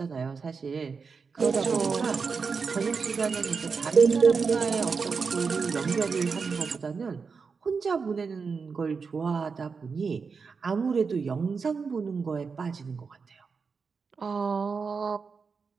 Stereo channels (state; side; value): quieter; left; 5.2 dB